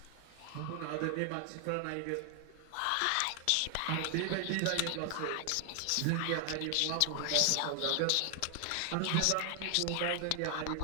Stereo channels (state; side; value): different; both; correlation 0.00